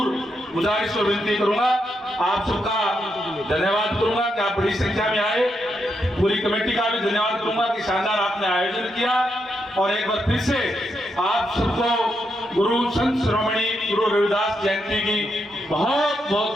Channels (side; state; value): both; normal; correlation 0.82